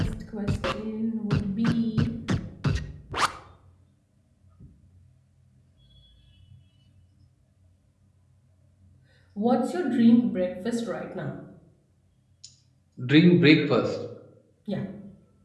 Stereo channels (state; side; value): identical; both; correlation 1.00